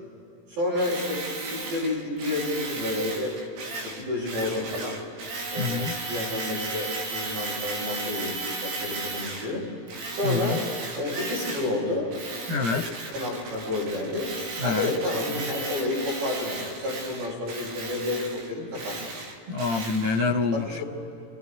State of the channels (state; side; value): late; left; 18 ms